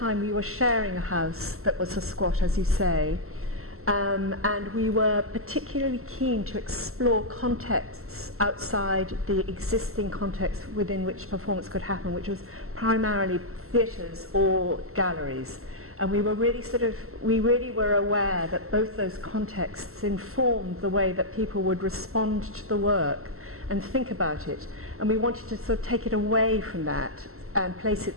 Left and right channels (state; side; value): late; left; 0.63 ms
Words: we were sharing a house that was a squat, as you say. And we were particularly keen to explore contexts outside the existing context within which performance could happen, which was primarily theatres or galleries. And we really were aware that both those contexts informed the way that people would respond to the work and think about it. And we wanted to sort of take it away from that and place it